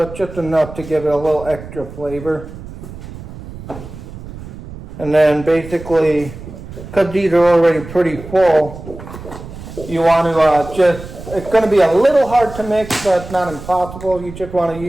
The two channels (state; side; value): noise; right; rumble, 13 dB below the sound